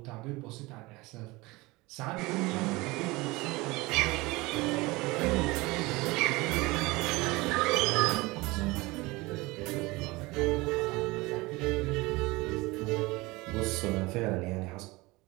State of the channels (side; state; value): left; quieter; 22.4 dB